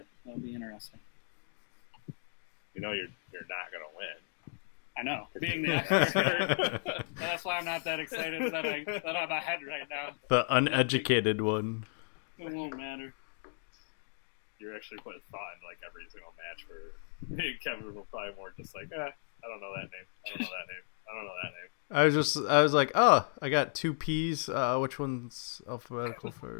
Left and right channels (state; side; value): silent; right; digital silence